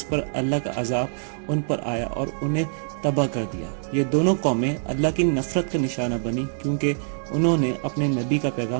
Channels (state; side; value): silent; left; digital silence